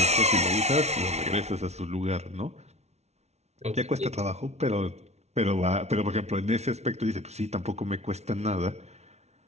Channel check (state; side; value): late; left; 0.31 ms